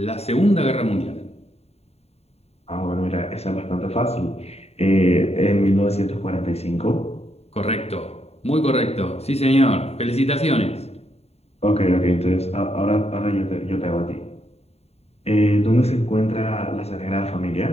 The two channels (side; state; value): right; late; 0.30 ms